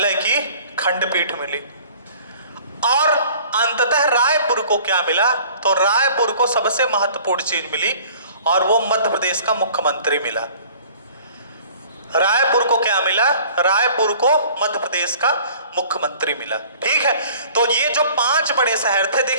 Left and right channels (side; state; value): both; inverted; correlation -0.49